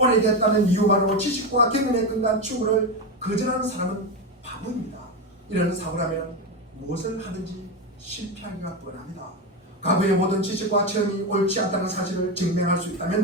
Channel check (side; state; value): both; normal; correlation 0.14